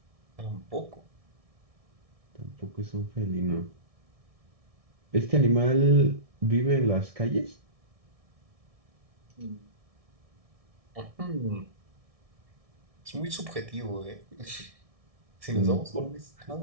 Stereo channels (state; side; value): late; left; 1.6 ms